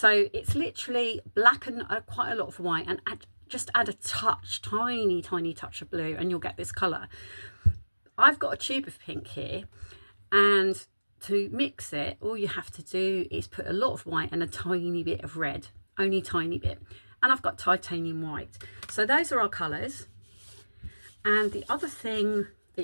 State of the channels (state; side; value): inverted; both; correlation -1.00